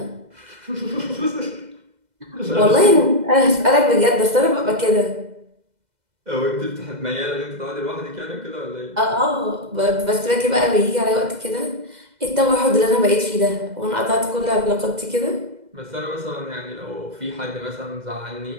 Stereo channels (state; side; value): late; left; 2.0 ms